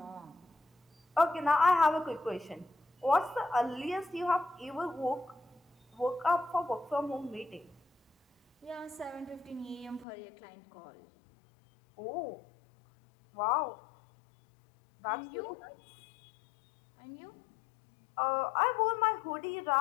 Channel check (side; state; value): right; drops out; at 10.1 s